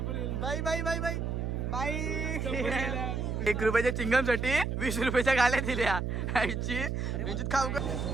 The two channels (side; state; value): right; noise; hum, 1 dB below the sound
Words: बाई बाई बाई बाई बाई 1 रुपयाच्या चिंगम साठी 20 रुपयाच्या गाल्या दिल्या आईची म्हणजे खाऊ का